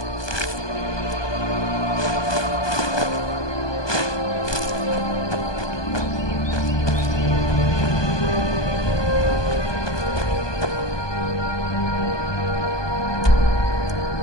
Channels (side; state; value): right; late; 1.2 ms